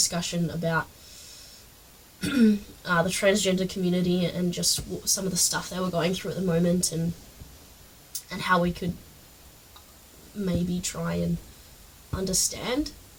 about the transgender community and just some of the stuff they were going through at the moment, and how we could maybe try and understand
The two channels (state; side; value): identical; both; correlation 1.00